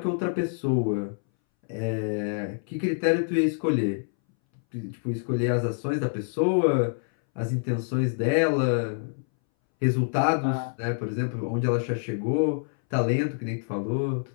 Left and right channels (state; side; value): silent; right; 61 dB below the other